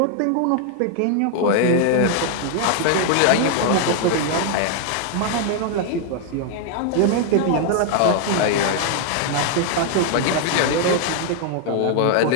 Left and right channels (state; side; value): different; both; correlation 0.00